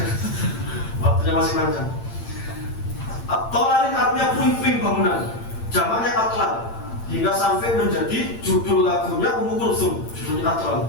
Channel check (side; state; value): right; late; 8.8 ms